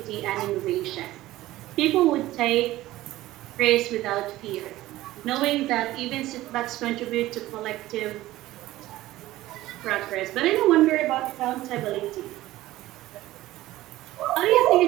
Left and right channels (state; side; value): quieter; left; 16.3 dB